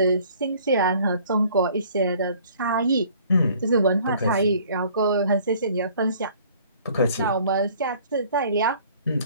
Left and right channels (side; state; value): both; inverted; correlation -0.54